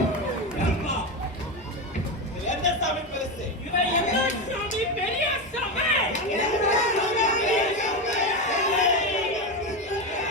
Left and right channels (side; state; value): both; normal; correlation 0.15